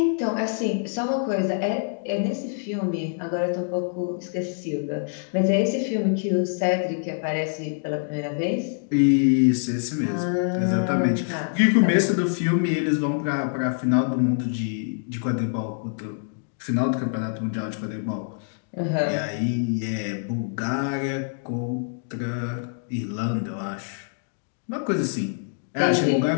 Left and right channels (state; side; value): silent; right; digital silence